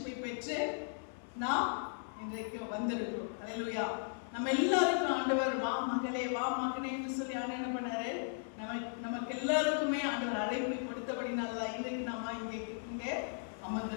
பெற்று நாம் இன்றைக்கு வந்திருக்கிறோம். அல்லேலூயா. நம்ம எல்லாருக்கும் ஆண்டவர் வா மகளே வா மகனே என்று சொல்லி ஆண்டவர் என்ன பண்ணாரு, நமக்கு எல்லாருக்குமே ஆண்டவர் அழைப்பை கொடுத்தபடினாலதான் இன்றைக்கு நாம இங்கே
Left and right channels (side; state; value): right; silent; 53 dB below the other